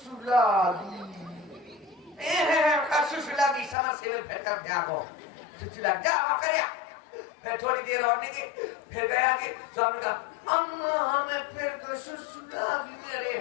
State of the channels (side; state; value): right; drops out; at 3.8 s